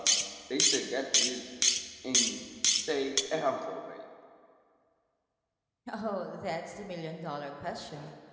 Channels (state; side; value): identical; both; correlation 1.00